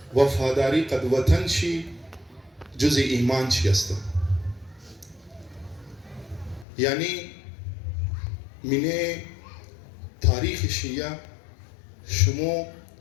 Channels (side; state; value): right; drops out; at 6.7 s